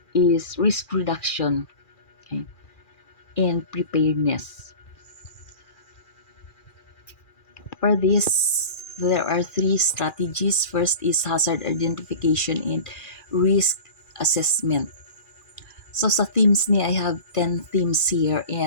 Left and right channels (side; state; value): right; late; 2.4 ms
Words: is risk reduction, okay, and preparedness. For this, there are three strategies. First is hazard identification and risk assessment. So sa themes ni, I have 10 themes here,